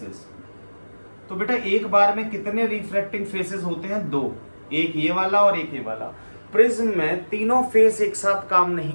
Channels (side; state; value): both; inverted; correlation -1.00